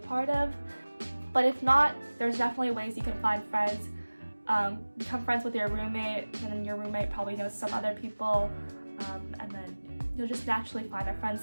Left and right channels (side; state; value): both; inverted; correlation -1.00